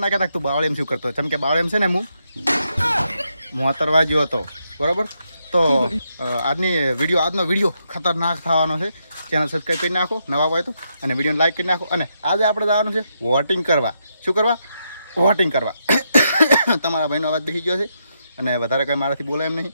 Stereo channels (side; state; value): both; inverted; correlation -0.81